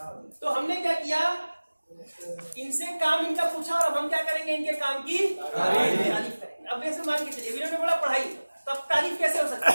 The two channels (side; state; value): both; inverted; correlation -1.00